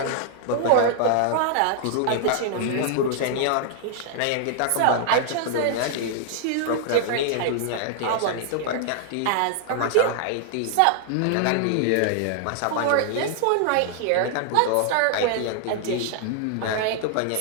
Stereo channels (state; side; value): different; both; correlation 0.00